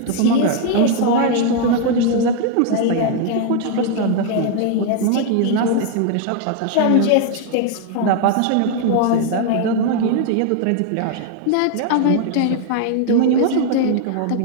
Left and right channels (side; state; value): both; different; correlation 0.00